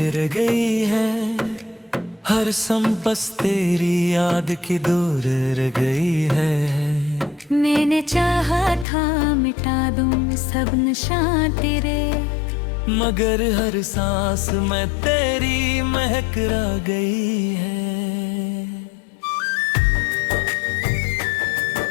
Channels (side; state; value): right; drops out; at 8.8 s